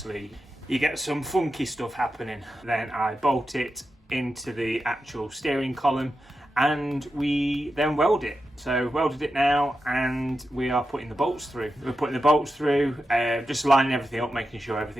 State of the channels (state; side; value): normal; both; correlation 0.90